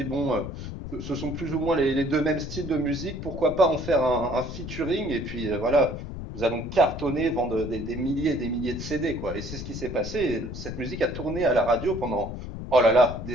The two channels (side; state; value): left; noise; rumble, 8 dB below the sound